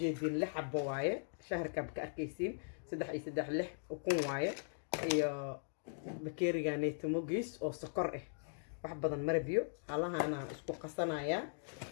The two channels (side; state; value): right; silent; digital silence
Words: 6 xabo waaye shaharka ka arkaysiin 3 iyo 3 6 kun waaye iyo bakeeriga neetimogiis oo sokor ah wax badan marabiyo halaha ana isku qasanaya